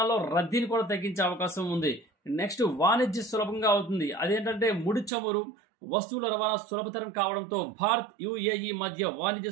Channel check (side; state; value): left; drops out; at 5.1 s